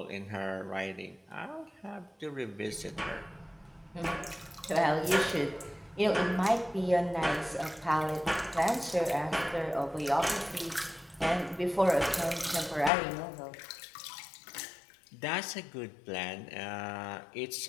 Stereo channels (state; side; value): drops out; right; at 12.9 s